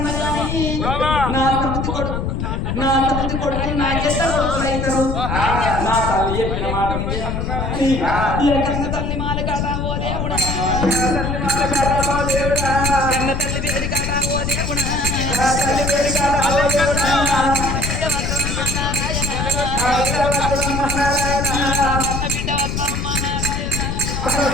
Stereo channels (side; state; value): left; noise; rumble, 2 dB below the sound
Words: నా సమితి కొడుకు నాకెంత కొడుకులైతారు నా తల్లి చెప్పిన మాట కన్న తల్లి మాల కాటా ఓ దేవుడా కన్న తల్లి పేరు కాటా ఓ దేవుడా